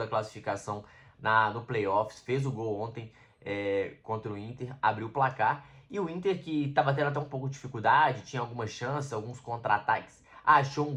classificação no playoffs, fez o gol ontem contra o Inter, abriu o placar. E o Inter, que estava tendo até um pouco de dificuldade, tinha algumas chances, alguns contra-ataques, achou um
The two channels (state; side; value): identical; both; correlation 1.00